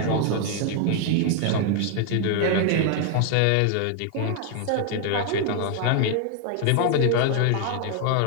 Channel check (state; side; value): different; both; correlation 0.00